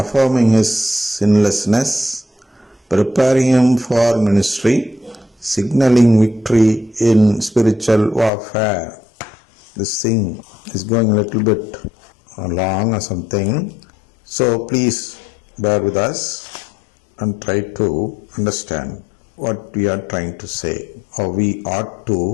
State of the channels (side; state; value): right; drops out; at 8.3 s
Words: his sinlessness, preparing him for ministry, signaling victory in spiritual warfare. This thing is going a little bit long or something, so please bear with us and try to understand what we are trying to say, or we ought